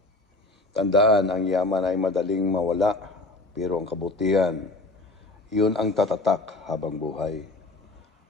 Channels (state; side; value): quieter; right; 3.1 dB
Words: Tandaan, ang yaman ay madaling mawala, pero ang kabutihan, yun ang tatatak habang buhay.